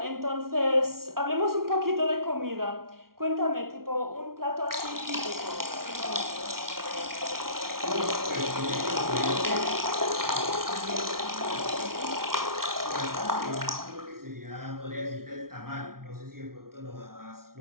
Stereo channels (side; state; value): left; late; 0.93 ms